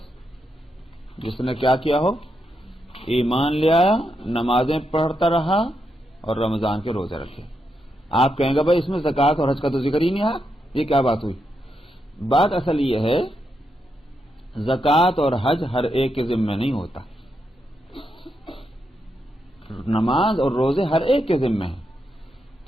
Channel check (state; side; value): normal; both; correlation 0.83